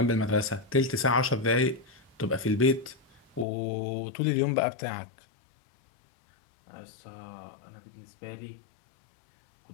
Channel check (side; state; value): right; drops out; at 3.5 s